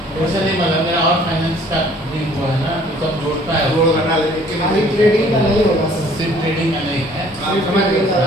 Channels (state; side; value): normal; both; correlation 0.56